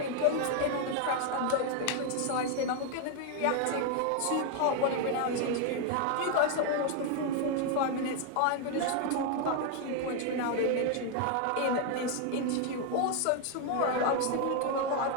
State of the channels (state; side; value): different; both; correlation 0.01